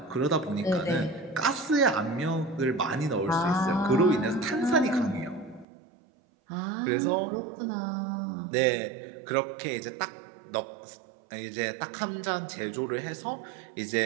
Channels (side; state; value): left; drops out; at 5.7 s